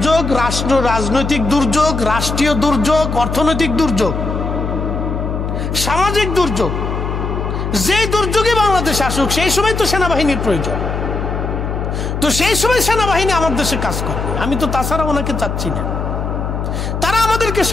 রাজনৈতিক দুর্যোগ, রাষ্ট্রীয় দুর্যোগ, অর্থনৈতিক দুর্যোগ, সামাজিক দুর্যোগ, যে দুর্যোগে বাংলাদেশ আসুক, সেই সময় তো সেনাবাহিনীর প্রয়োজন। তো সেই সময় সেনাবাহিনী আমার দেশে কাজ করবে। আমি তো তাছাড়া ওনাকে চাচ্ছি না। তারা আমাদেরকে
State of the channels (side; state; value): left; noise; hum, 3 dB below the sound